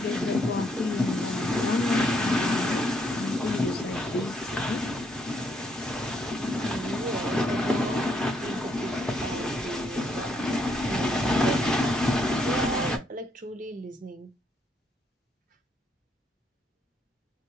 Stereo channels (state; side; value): normal; both; correlation 0.73